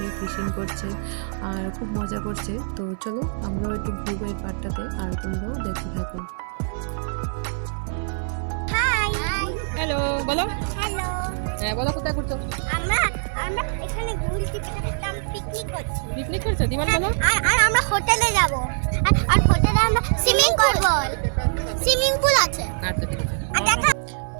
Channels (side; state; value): left; silent; 56 dB below the other